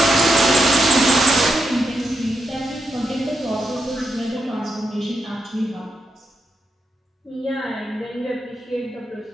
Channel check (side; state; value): both; normal; correlation 0.83